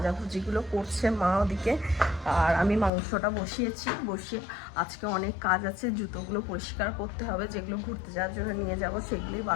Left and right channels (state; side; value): drops out; right; at 2.9 s